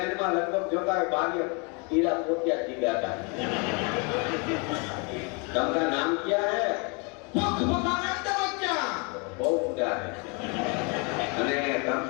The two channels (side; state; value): right; quieter; 33.1 dB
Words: में लगभग जोता है बागी कीड़ा पोतिया चिल्लाता है. तुमका नाम क्या है? भगवानंद बच्चा. बहुत ऊंचा है. અને